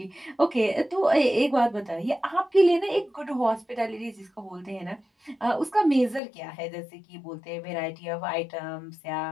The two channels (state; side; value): drops out; right; at 6.2 s